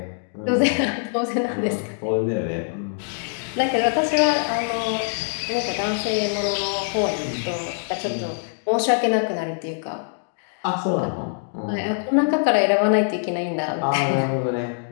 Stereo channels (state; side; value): silent; right; digital silence